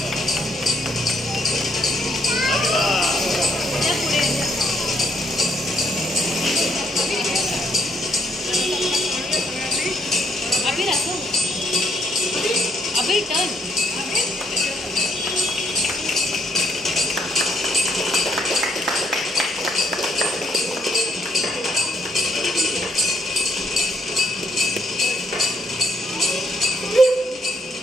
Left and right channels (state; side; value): normal; both; correlation 0.71